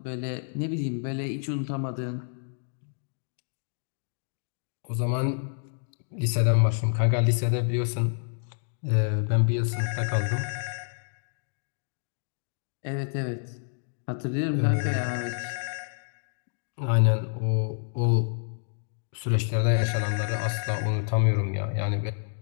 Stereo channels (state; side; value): silent; right; digital silence